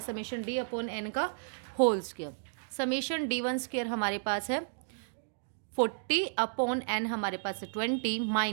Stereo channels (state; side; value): silent; left; digital silence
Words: summation d upon n का whole square. Summation d1 square हमारे पास है 40 अपॉन n हमारे पास है 20